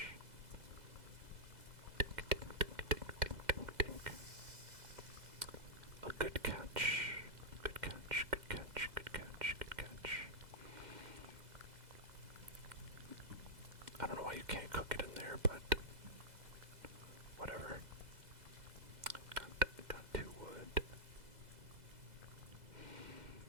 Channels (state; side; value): late; left; 2.0 ms